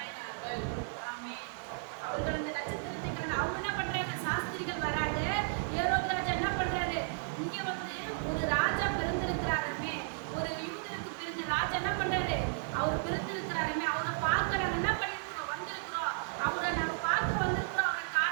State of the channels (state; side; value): silent; left; digital silence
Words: ஆமென். அவர்கள் அந்த நட்சத்திரத்தை கண்டு அவங்க என்ன பண்றாங்க, சாஸ்திரிகள் வராங்க, ஏரோது ராஜா என்ன பண்றாரு, இங்க வந்து ஒரு ராஜா பிறந்திருக்கிறாருமே, ஒரு யூதருக்கு பிறந்த ராஜா என்ன பண்றாரு, அவர் பிறந்திருக்கிறாருமே, அவரை பார்க்க நாங்க என்ன பண்ணிருக்கிறோம், வந்திருக்கிறோம், அவரை நாங்க பார்க்க வந்திருக்கிறோம், அவரை